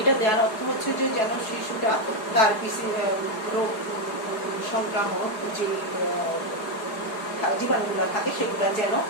এটা দেওয়ার অর্থ হচ্ছে যে যেন শিশুটা তার রোগ সংক্রামক যে জীবাণুগুলো থাকে সেগুলো যেন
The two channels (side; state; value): right; late; 4.8 ms